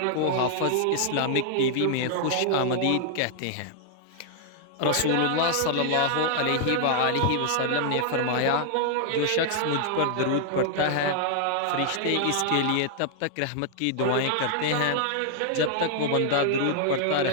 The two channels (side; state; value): both; different; correlation -0.01